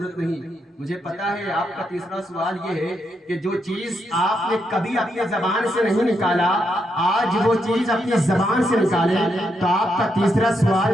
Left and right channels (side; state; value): both; normal; correlation 0.80